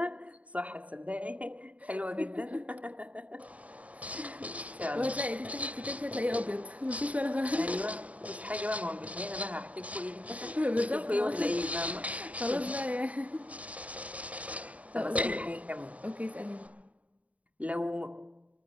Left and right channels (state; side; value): late; left; 0.068 ms